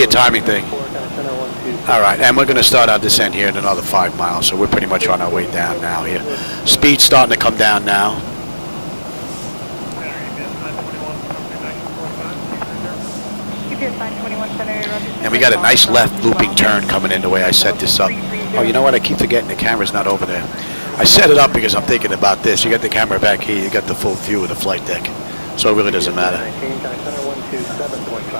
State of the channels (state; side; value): inverted; both; correlation -1.00